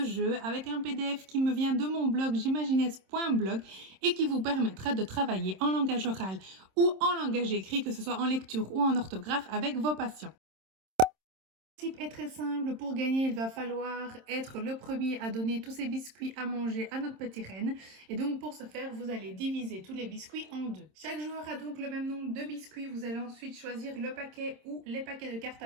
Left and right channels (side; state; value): left; late; 26 ms